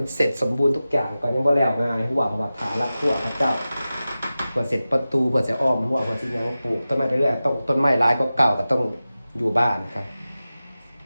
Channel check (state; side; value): inverted; both; correlation -0.95